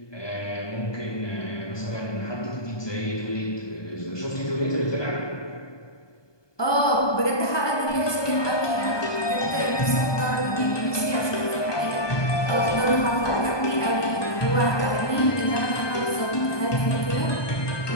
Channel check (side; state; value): right; late; 1.2 ms